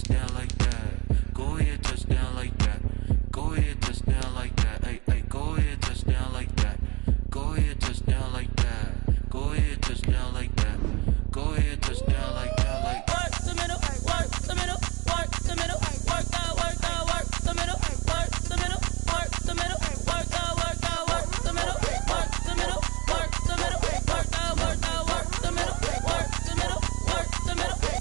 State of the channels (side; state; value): left; quieter; 26.0 dB